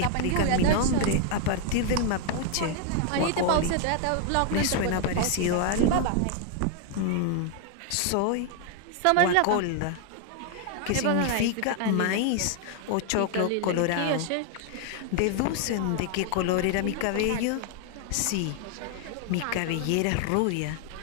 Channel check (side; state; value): both; different; correlation 0.00